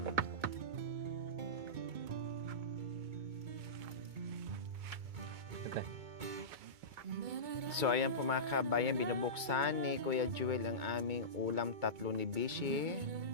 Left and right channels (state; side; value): late; left; 2.2 ms